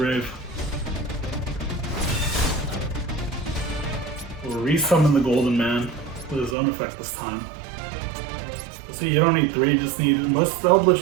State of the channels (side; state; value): left; drops out; at 6.6 s